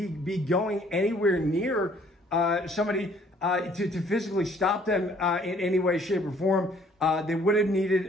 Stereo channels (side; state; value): both; normal; correlation 0.60